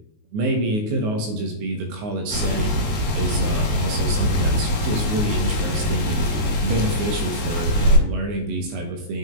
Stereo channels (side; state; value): left; late; 19 ms